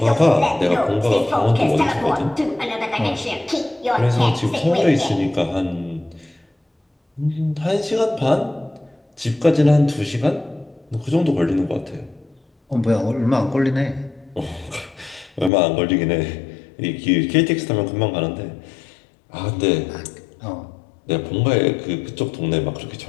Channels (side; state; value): right; drops out; at 15.5 s